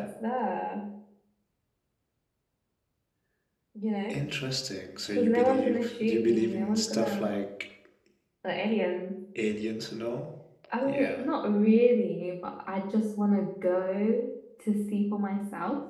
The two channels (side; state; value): both; identical; correlation 1.00